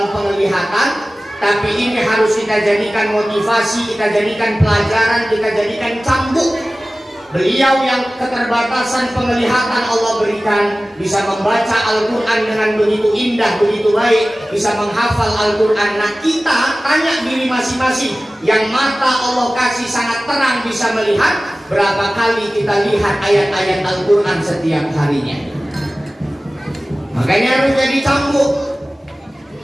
penglihatan, tapi ini harus kita jadikan motivasi, kita jadikan pelajaran, kita jadikan cambuk. Beliau yang keterbatasan penglihatan Allah berikan bisa membaca Al-Quran dengan begitu indah, begitu baik, bisa menghafal Al-Quran. Nah kita tanya diri masing-masing, yang mata Allah kasih sangat terang bisa melihat, berapa kali kita lihat ayat-ayat Al-Quran setiap harinya. Makanya harus jadi cambuk.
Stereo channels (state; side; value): normal; both; correlation 0.97